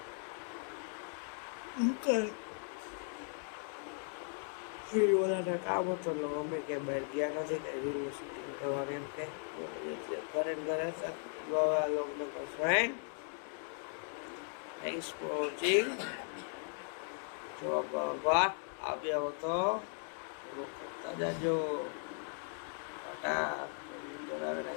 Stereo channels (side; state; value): right; silent; 53 dB below the other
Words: દુકાન. ઓલાને કામ હતો એટલે અમે કે બહાર ગયા નથી, કઈ રીલનું શૂટિંગ કરવાનું એમ કે ઘરે ઘરે હતા. લોકોને ફ્રેન્ડ, થેન્ક્સ ફોર વોચિંગ. જો આભાર. આવ્યા હો તો કરતા જાજો. ટાટા.